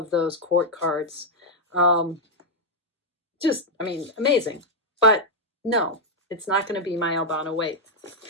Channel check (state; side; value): normal; both; correlation -0.02